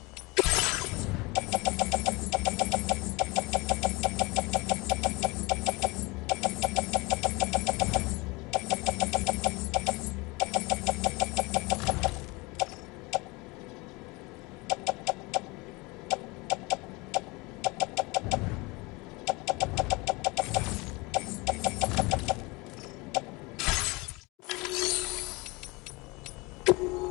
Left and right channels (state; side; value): quieter; right; 25.0 dB